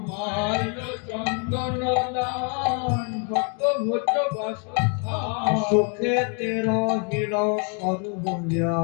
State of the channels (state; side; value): quieter; right; 39.0 dB